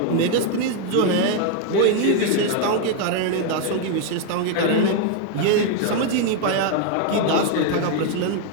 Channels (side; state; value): both; different; correlation 0.00